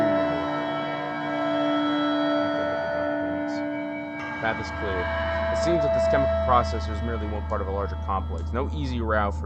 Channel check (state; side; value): identical; both; correlation 1.00